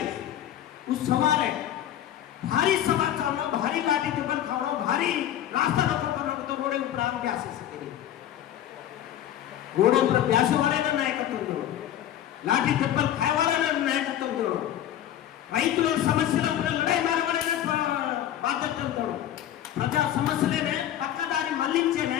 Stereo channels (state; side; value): quieter; right; 11.5 dB